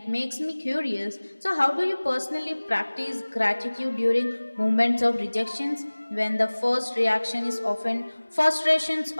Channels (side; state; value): both; inverted; correlation -1.00